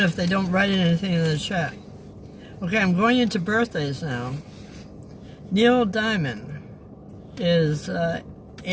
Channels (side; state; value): both; identical; correlation 1.00